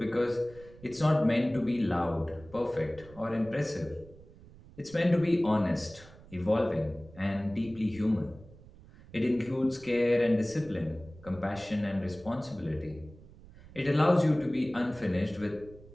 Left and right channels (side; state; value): right; noise; rumble, 21 dB below the sound